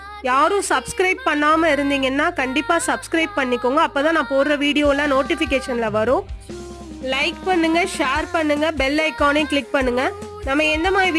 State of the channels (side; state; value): both; identical; correlation 1.00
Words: யாரும் சப்ஸ்கிரைப் பண்ணாமல் இருந்தீங்கன்னா கண்டிப்பாக சப்ஸ்கிரைப் பண்ணிக்கோங்க. அப்போ தான் நான் போடுற வீடியோலாம் நோட்டிஃபிகேஷனில் வரும். லைக் பண்ணுங்க, ஷேர் பண்ணுங்க, பெல் ஐக்கானையும் கிளிக் பண்ணுங்க. நம்ம எந்த மாதிரி